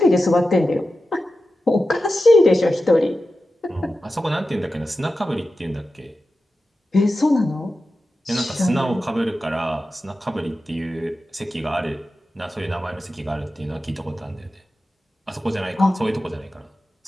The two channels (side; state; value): both; normal; correlation 0.92